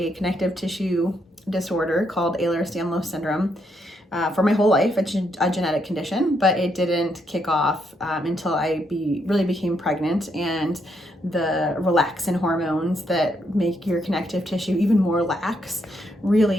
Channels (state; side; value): normal; both; correlation 0.77